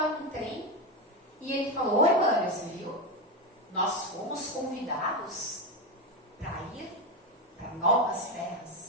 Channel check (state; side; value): normal; both; correlation 0.14